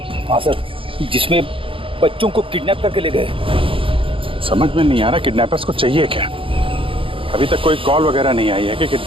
हाँ सर, जिसमें बच्चों को किडनैप करके ले गए। समझ में नहीं आ रहा किडनैपर्स को चाहिए क्या। अभी तक कोई कॉल वगैरह नहीं आई है कि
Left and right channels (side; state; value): left; late; 0.26 ms